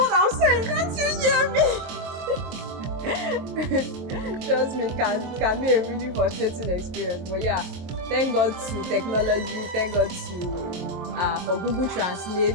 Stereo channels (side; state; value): left; late; 23 ms